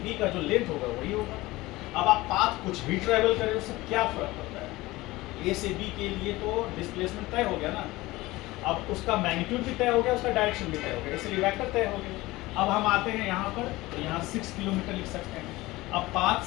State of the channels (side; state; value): right; quieter; 19.5 dB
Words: का जो लेंथ होगा वही होगा। अब आप पाथ कुछ भी ट्रेवल करें, उससे क्या फर्क पड़ता है? ए से बी के लिए तो डिस्प्लेसमेंट तय हो गया ना, अब उसका मैग्नीट्यूड भी तय हो गया, उसका डायरेक्शन भी तय हो गया, इसलिए वेक्टर तय हो गया। अब हम आते हैं यहाँ पर, तो यहाँ 6 किलोमीटर लिख सकते हैं। अब पाथ